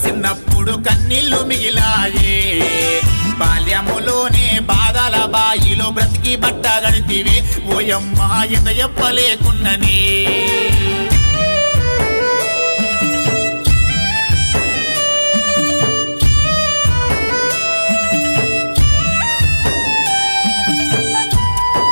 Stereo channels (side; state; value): both; inverted; correlation -1.00